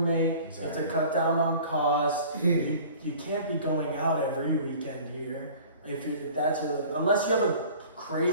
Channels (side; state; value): both; inverted; correlation -0.46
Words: Exactly. You have to cut down on costs. Mhm. You can't be going out every weekend here. If that's unless you have a